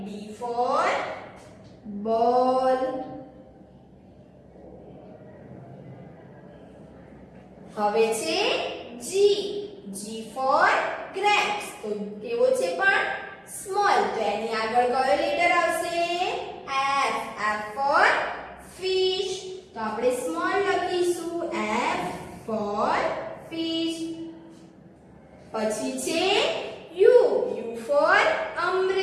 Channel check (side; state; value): both; identical; correlation 1.00